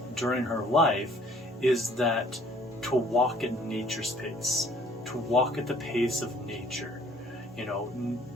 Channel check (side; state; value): both; normal; correlation 0.57